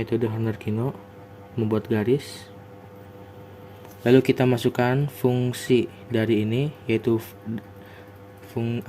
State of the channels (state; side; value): identical; both; correlation 1.00